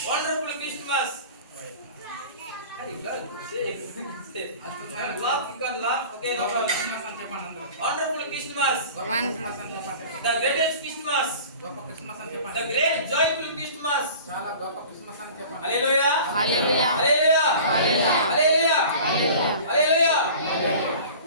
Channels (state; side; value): inverted; both; correlation -0.42